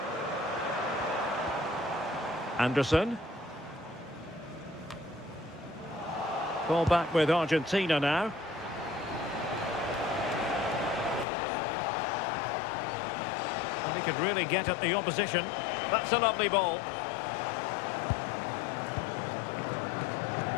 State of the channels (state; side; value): drops out; right; at 11.2 s